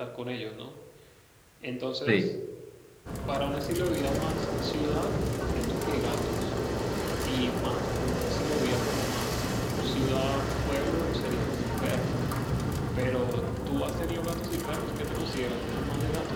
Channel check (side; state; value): both; identical; correlation 1.00